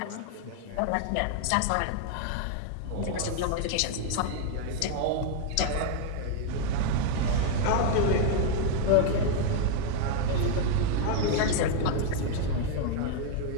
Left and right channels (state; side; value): different; both; correlation 0.00